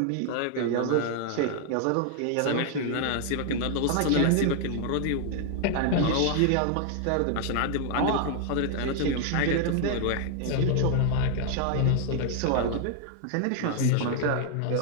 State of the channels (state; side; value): different; both; correlation 0.00